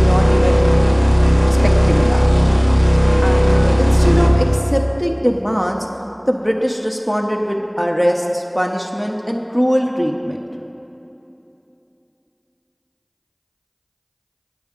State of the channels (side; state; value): both; identical; correlation 1.00